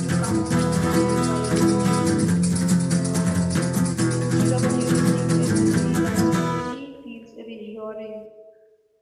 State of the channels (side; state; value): both; identical; correlation 1.00